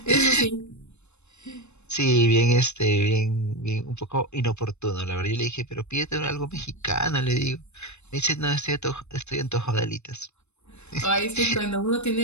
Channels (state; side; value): late; right; 0.81 ms